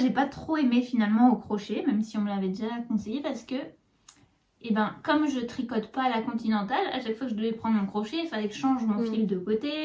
pas trop aimé finalement au crochet, même si on me l'avait déjà conseillé, parce que, eh ben, comme je tricote pas à la continentale, à chaque fois que je devais prendre mon crochet, il fallait que je change mon fil de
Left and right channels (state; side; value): identical; both; correlation 1.00